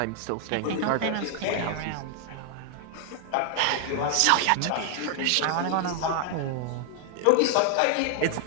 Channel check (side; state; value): both; different; correlation 0.00